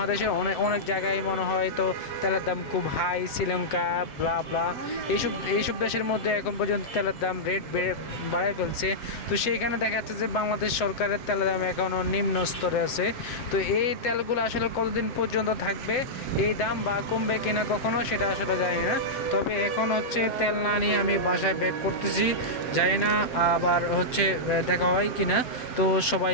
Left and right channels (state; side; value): late; right; 7.9 ms